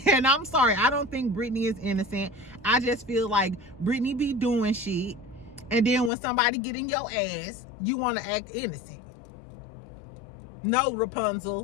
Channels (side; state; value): right; drops out; at 6.1 s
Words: And I'm sorry. I don't think Brittany is innocent. I just feel like Brittany be doing shit. And then when somebody get in your ass, you want to act innocent. No,